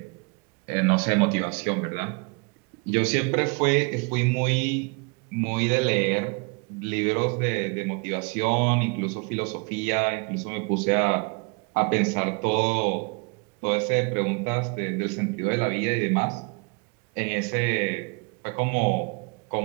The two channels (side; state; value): left; quieter; 33.2 dB